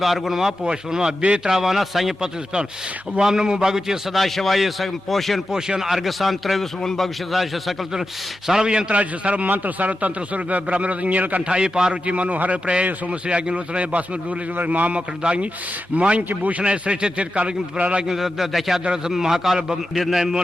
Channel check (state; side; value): normal; both; correlation 0.91